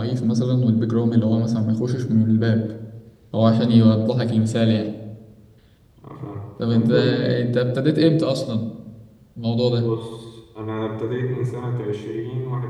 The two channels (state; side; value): identical; both; correlation 1.00